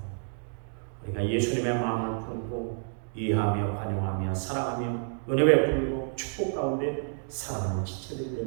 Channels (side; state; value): left; silent; digital silence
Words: 우리가 예수님의 마음을 품고 이해하며 관용하며 사랑하며 은혜 베풀고 축복 가운데 살아가는 지체들이